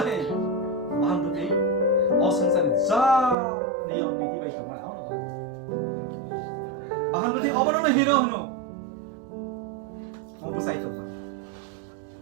바한 버티 어슴사는 자 Leon ni tiba itu mana orang? Bahan berarti apa nama hero no? Mau busai itu mana?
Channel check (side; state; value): left; drops out; at 3.4 s